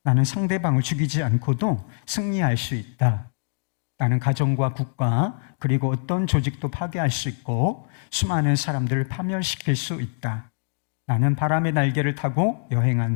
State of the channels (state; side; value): silent; right; digital silence